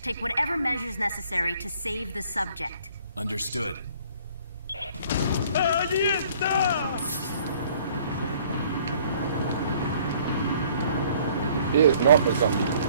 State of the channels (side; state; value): both; inverted; correlation -0.58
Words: Take whatever measures necessary to save the subject. Understood. He is not a zombie.